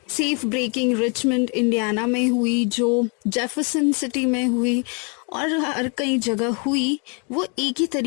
सेफ ब्रेकिंग रिचमंड इंडियाना में हुई, जो जेफरसन सिटी में हुई और हर कई जगह हुई, वो एक ही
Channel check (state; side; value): quieter; right; 35.9 dB